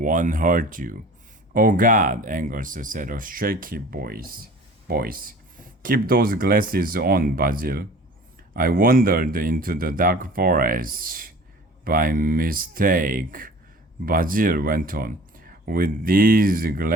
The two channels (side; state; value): both; normal; correlation 0.45